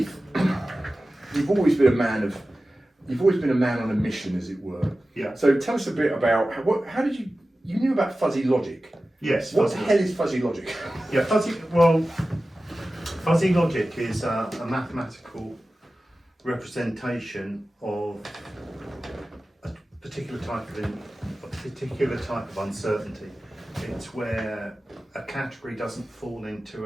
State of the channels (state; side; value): normal; both; correlation 0.95